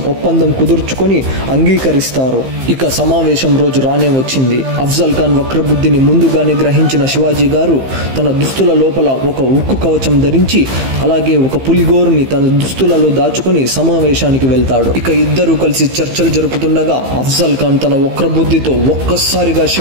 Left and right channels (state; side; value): late; left; 15 ms